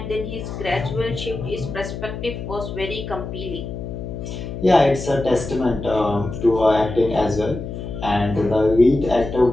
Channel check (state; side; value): noise; left; hum, 7 dB below the sound